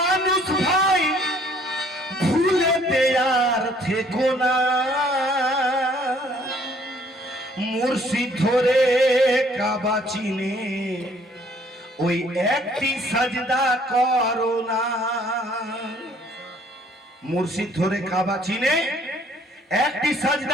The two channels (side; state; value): both; normal; correlation 0.60